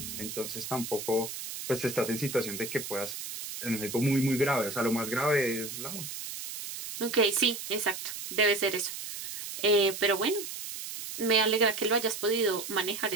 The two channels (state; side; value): noise; right; hiss, 8 dB below the sound